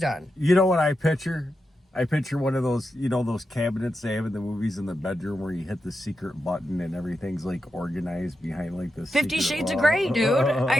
on? You know what I picture? I picture one of those, you know, those cabinets they have in the movies in the bedroom where you hit the secret button and everything's like organized behind like this. 50 Shades of Grey, dude.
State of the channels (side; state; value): both; normal; correlation 0.88